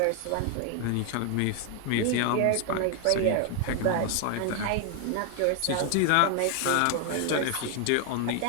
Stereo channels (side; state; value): both; different; correlation 0.00